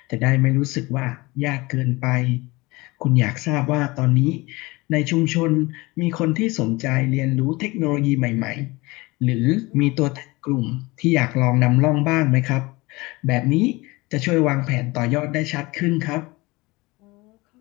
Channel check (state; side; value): quieter; right; 22.8 dB